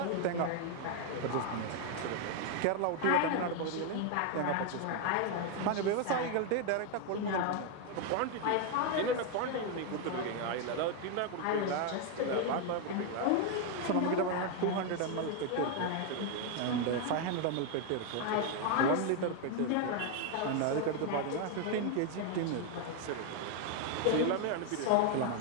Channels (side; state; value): both; different; correlation 0.01